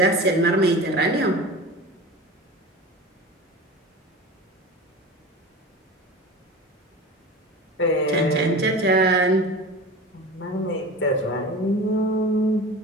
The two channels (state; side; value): normal; both; correlation 0.33